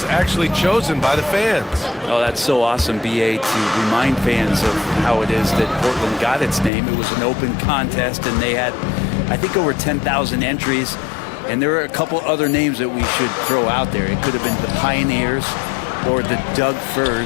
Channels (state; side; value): drops out; right; at 6.7 s